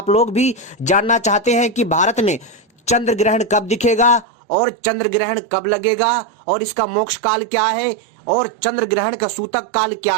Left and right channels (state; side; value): drops out; left; at 4.2 s